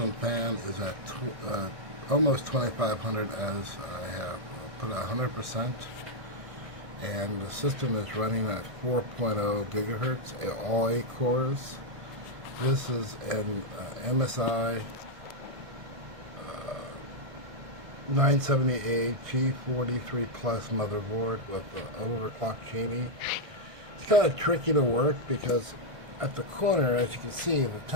fan is at almost 2500 as I have put 100%, and the system is running at 4.0 gigahertz, all 8 cores. This is an MSI 970A G43 Plus motherboard with the overclock genie. It's kind of tricky to work because at the corner, as you can see, the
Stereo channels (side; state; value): left; late; 1.6 ms